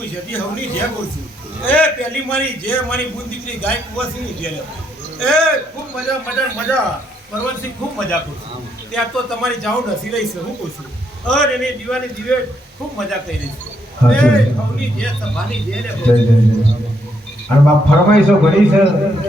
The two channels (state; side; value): normal; both; correlation 0.75